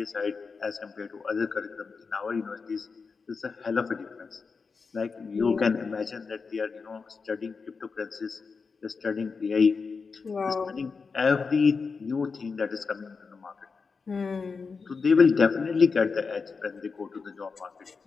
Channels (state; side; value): quieter; right; 4.9 dB